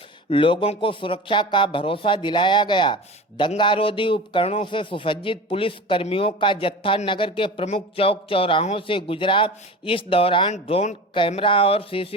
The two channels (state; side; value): normal; both; correlation 0.33